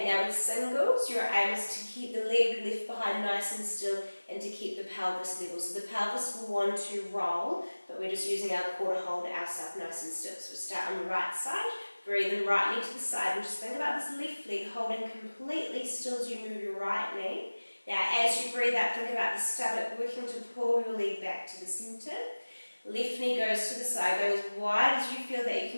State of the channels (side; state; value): both; inverted; correlation -1.00